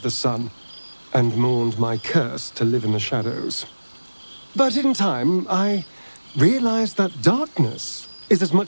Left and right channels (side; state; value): both; inverted; correlation -1.00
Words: the sun and mourned my curse to live in the shadows. But in time, I realized that darkness is as